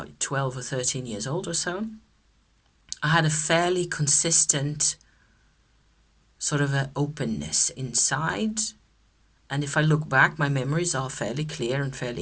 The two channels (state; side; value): identical; both; correlation 1.00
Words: 12 or 13 years old or so. I had a fairly consistent sort of an openness inside. And if I look back, my memories are fairly clear and